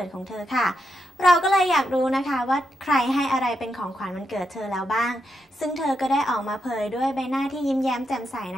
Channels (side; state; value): both; normal; correlation 0.84